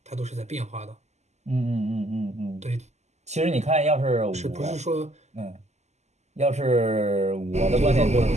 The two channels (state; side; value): late; left; 0.33 ms